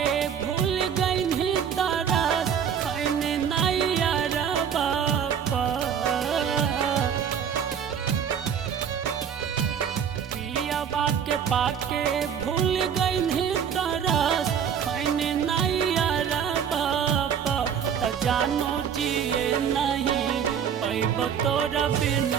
भूल गई तारा खैने नैया बापा पिया के पाके भूल गई तारा खैने नैया बापा त जानो जिए नहीं पैब तोरा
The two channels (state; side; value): quieter; left; 7.9 dB